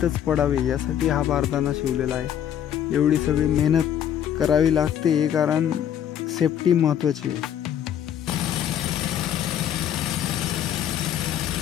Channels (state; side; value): quieter; right; 9.9 dB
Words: पडावे यासाठी हा बारदाना शिवलेला आहे. एवढी सगळी मेहनत करावी लागते कारण सेफ्टी महत्त्वाची आहे.